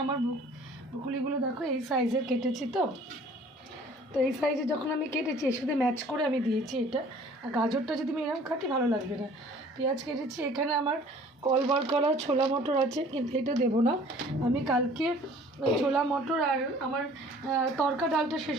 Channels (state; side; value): normal; both; correlation 0.52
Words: আমার ব্রুকলিগুলো দেখো এই সাইজের কেটেছি। তো এই সাইজে যখন আমি কেটেছি এর সাথে ম্যাচ করে আমি দিয়েছি এটা। আর গাজরটা যদি আমি এরকম কাটি ভালো লাগবে না। পেঁয়াজ কেটেছি, এখানে আমার কল করা ছোলা মটর আছে, কিন্তু এটা দেবো না। আমি কালকে ছোলা মটর আর আমার তরকা ডালটা শেষ